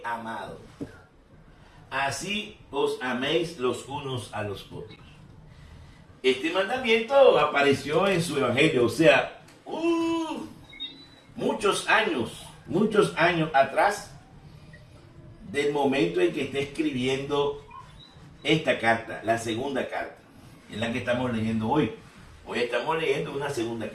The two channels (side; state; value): both; identical; correlation 1.00